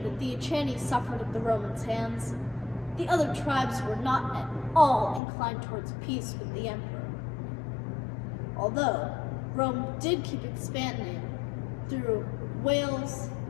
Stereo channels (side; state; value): right; drops out; at 5.2 s